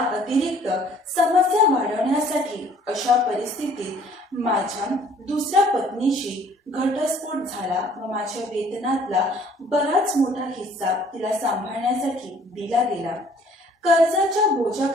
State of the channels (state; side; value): normal; both; correlation 0.57